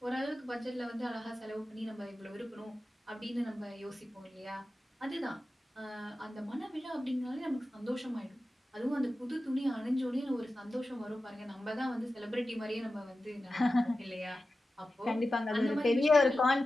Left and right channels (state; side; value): normal; both; correlation 0.94